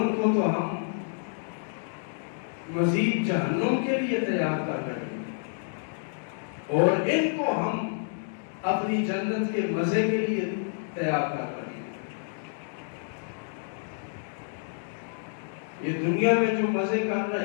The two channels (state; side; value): silent; right; digital silence